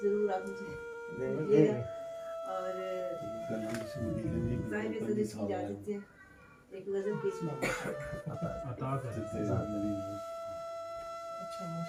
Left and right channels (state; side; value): identical; both; correlation 1.00